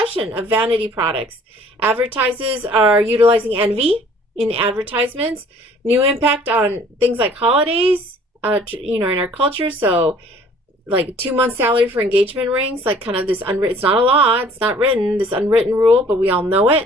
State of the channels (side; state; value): both; normal; correlation 0.54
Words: of vanity products. Advertisers are utilizing envy in advertisements. New impact on things like holidays, in our culture. So, like 2 month salary for engagement rings, like kind of this unwritten. It's not a law. It's not written. This unwritten rule, but we all know